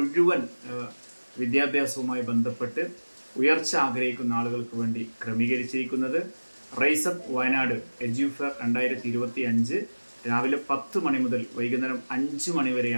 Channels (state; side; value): inverted; both; correlation -1.00